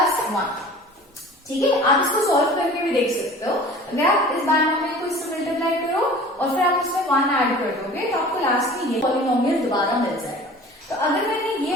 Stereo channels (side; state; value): both; normal; correlation 0.44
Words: 1। ठीक है, आप इसको सॉल्व करके भी देख सकते हो, अगर आप इस बाइनोमियल को इससे मल्टीप्लाई करो और फिर आप इसमें 1 ऐड कर दोगे तो आपको लास्ट में ये पॉलिनोमियल दोबारा मिल जाएगा। तो अगर मैंने ये